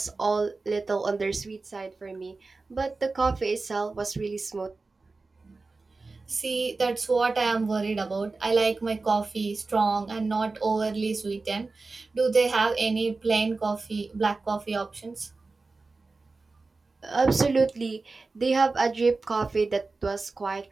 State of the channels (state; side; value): quieter; left; 3.8 dB